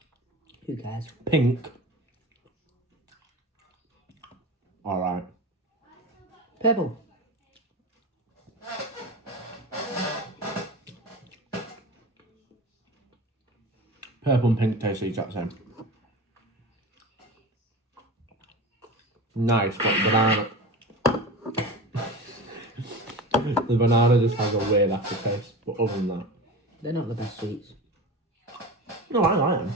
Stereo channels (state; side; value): normal; both; correlation 0.31